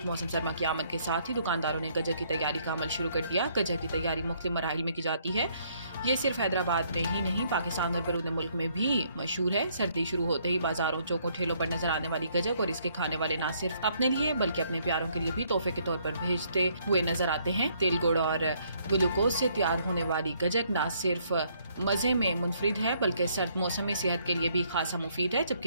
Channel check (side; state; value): both; inverted; correlation -0.68